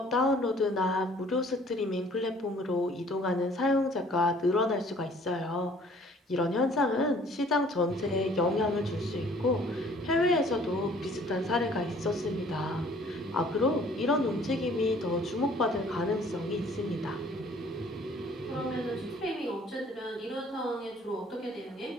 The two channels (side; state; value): both; normal; correlation 0.56